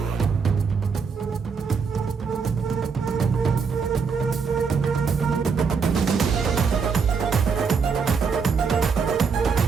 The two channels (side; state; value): left; quieter; 5.5 dB